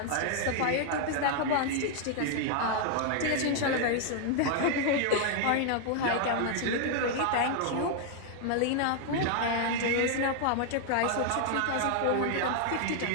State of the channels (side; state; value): both; different; correlation 0.00